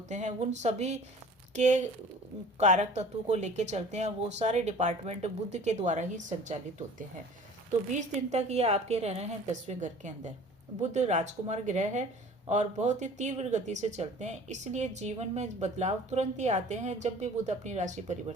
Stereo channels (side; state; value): both; normal; correlation 0.46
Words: हैं, उन सभी के कारक तत्व को लेके चलते हैं। वो सारे डिपार्टमेंट बुध के द्वारा ही संचालित होते हैं। तो 20 दिन तक ये आपके रह रहे हैं 10वें घर के अंदर। बुध राजकुमार ग्रह है और बहुत ही तीव्र गति से चलते हैं, इसलिए जीवन में बदलाव तुरंत ही आते हैं जब भी बुध अपनी राशि